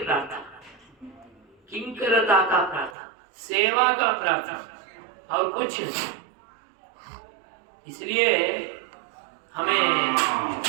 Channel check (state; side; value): drops out; left; at 3.0 s